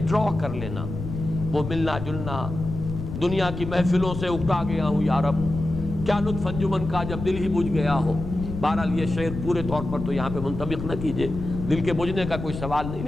کر لینا، وہ ملنا جلنا، دنیا کی محفلوں سے اکتا گیا ہوں یا رب، کیا لطف انجمن کا جب دل ہی بجھ گیا ہو۔ بہرحال یہ شعر پورے طور پر تو یہاں پہ منطبق نہ کیجئے، دل کے بجھنے کا کوئی سوال نہیں،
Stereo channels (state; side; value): noise; left; rumble, 7 dB below the sound